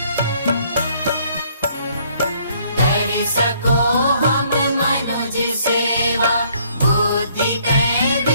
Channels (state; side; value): inverted; both; correlation -0.64